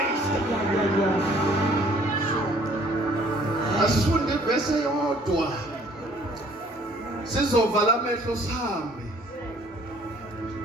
Asifunde ivese yodwa. Sizovala amehlo sihambe.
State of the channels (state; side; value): normal; both; correlation 0.58